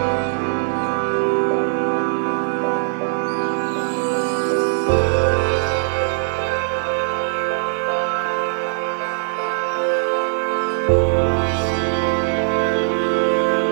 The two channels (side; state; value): left; silent; 57 dB below the other